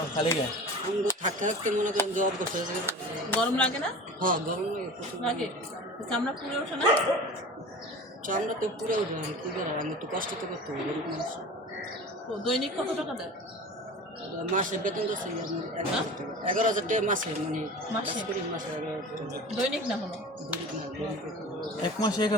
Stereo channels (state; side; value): normal; both; correlation 0.36